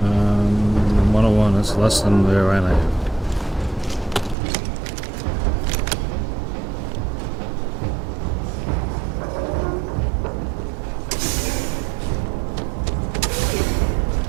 101, that's less than the Orion I have.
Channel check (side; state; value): left; drops out; at 4.4 s